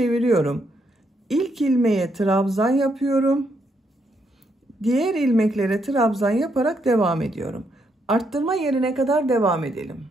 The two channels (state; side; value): normal; both; correlation 0.76